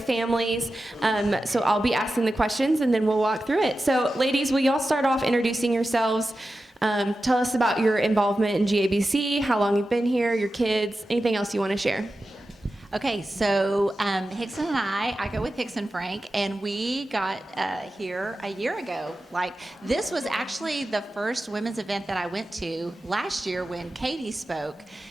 So I'll be asking the questions and then we'll walk through it. So ladies, will y'all start off introducing yourselves? Tell us about your involvement in GABC, how long you've been here, your kids, anything else you want to share. Okay, so Hickson and I go with Hickson Frank, and we got here a year ago. This was actually the first women's event that I went to last year when Katie spoke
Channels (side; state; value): both; normal; correlation 0.93